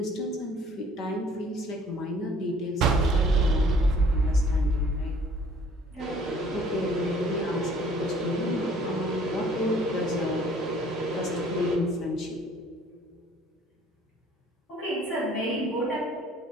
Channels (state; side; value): normal; both; correlation 0.56